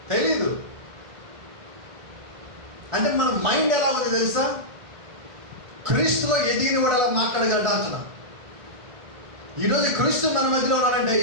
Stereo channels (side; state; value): left; late; 1.4 ms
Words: తెలీదు. అంటే మన మైండ్ ఎలా ఉంది తెలుసా? క్రీస్తులో ఎదిగిన కూడా అలా మాట్లాడగలడా అంటున్నా. ఈరోజు క్రీస్తు మన మధ్యలో ఉన్నారంటే